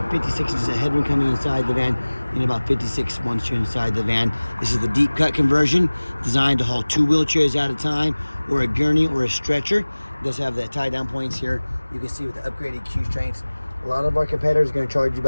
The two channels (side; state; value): both; inverted; correlation -1.00